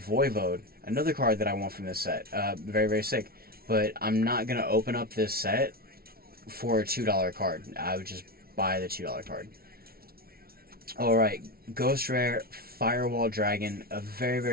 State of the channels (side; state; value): left; late; 0.44 ms